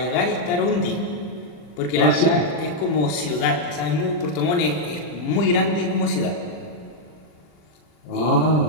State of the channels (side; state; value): right; late; 40 ms